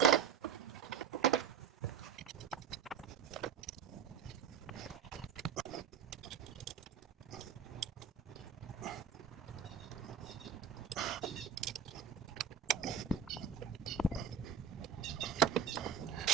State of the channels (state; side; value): quieter; left; 7.3 dB